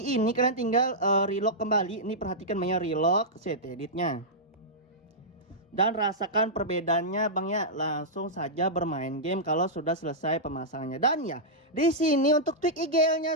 ini, kalian tinggal relock kembali. Ini perhatikan banyak relock set editnya. Dan rasakan perbedaannya Bang ya, langsung saja bermain game kalau sudah selesai pemasangannya. Dan ya, di sini untuk tweak IGL-nya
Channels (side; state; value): both; normal; correlation -0.11